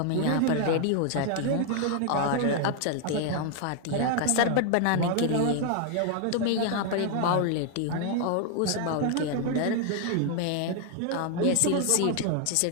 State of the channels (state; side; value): different; both; correlation 0.00